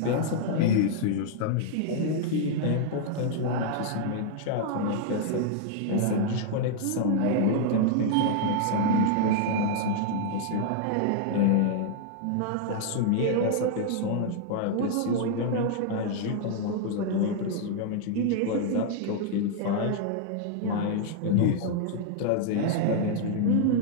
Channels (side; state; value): both; different; correlation -0.01